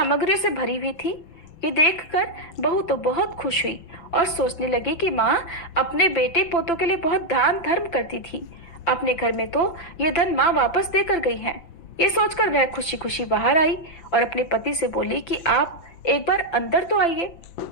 से भरी हुई थी। ये देखकर बहू तो बहुत खुश हुई और सोचने लगी कि माँ अपने बेटे पोतों के लिए बहुत दान धर्म करती थी, अपने घर में तो ये धन माँ वापस देकर गई है। ये सोचकर वह खुशी खुशी बाहर आई और अपने पति से बोली कि आप एक बार अंदर तो आइए।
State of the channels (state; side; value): late; right; 5.9 ms